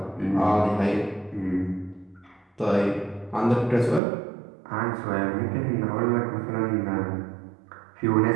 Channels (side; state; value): left; drops out; at 4.0 s